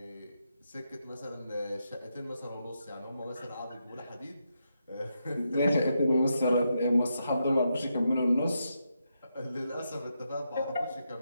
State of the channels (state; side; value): inverted; both; correlation -0.83